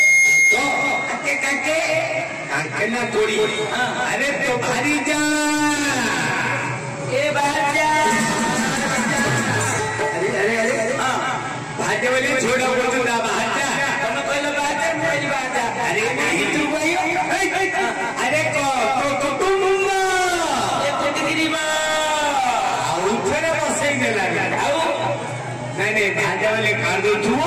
तो आके काके काके ना कोड़ी अरे तो भारी जा ए बाजा अरे अरे अरे हां भाटे वाले छोड़ा बोल ना बाजा तुम कहलो बाजा मेरी बाजा अरे नहीं तू भाई अरे को तो तुम ना ये कोटगिरी बा उठने बसई देला आउ नहीं नहीं भाजा वाले कार दो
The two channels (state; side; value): identical; both; correlation 1.00